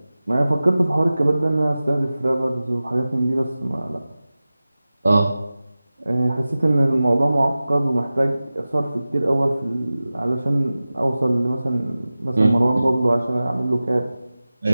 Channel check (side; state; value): both; inverted; correlation -0.96